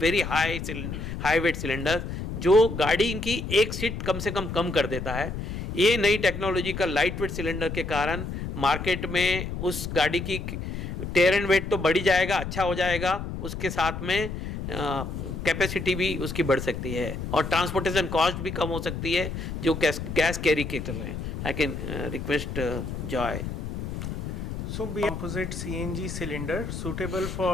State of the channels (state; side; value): noise; left; rumble, 6 dB below the sound